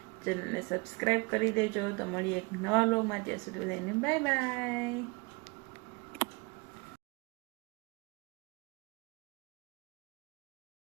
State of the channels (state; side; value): quieter; left; 28.6 dB